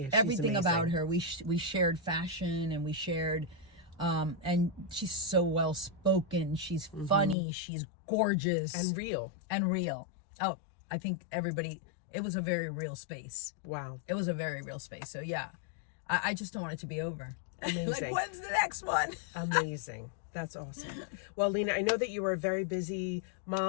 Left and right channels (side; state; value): right; drops out; at 7.4 s